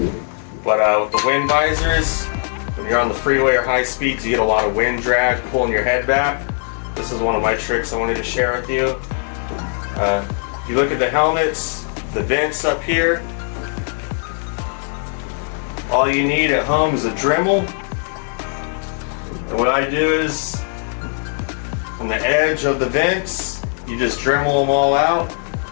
But with the wind visors, when you're on the freeway or high speeds, you get a lot of wind drag pulling your head back. This is one of my tricks I wanted to share with you. If you look at the helmets, the vents up here, all you need at home is a Dremel. And what I do is, on the edge of the vents, you just Dremel them all out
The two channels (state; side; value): silent; right; 56 dB below the other